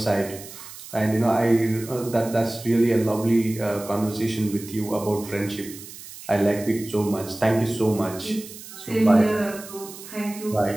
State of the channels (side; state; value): right; noise; hiss, 15 dB below the sound